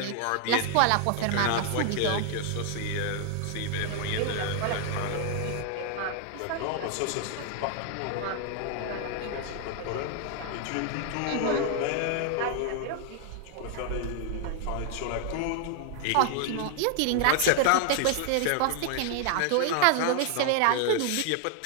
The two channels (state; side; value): different; both; correlation 0.00